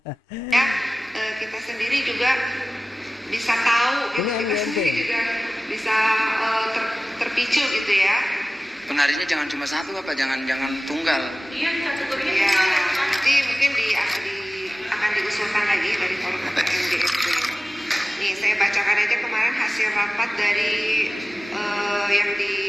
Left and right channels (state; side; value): normal; both; correlation 0.97